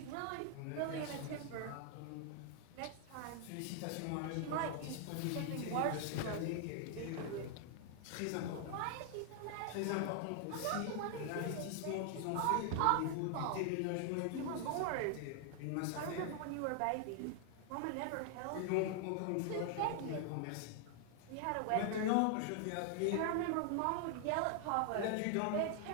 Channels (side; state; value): both; different; correlation 0.00